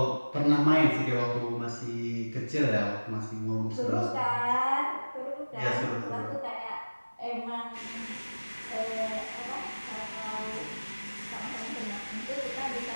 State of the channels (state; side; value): inverted; both; correlation -1.00